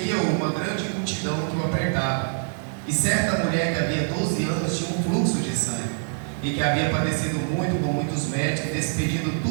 uma grande multidão que o apertava. E certa mulher que havia 12 anos tinha um fluxo de sangue, e que havia padecido muito com muitos médicos, despedindo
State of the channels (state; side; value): silent; left; digital silence